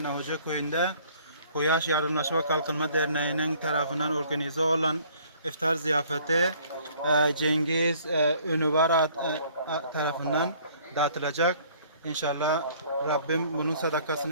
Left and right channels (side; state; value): both; inverted; correlation -0.57